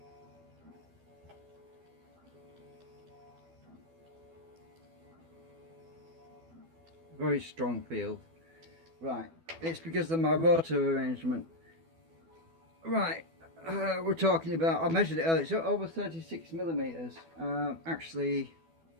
Very strong field. Right, it's because of my rotor arrangement. Right, we're talking about, I measured it earlier, it's over 36 millimeters. Actually,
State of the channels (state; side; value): late; left; 12 ms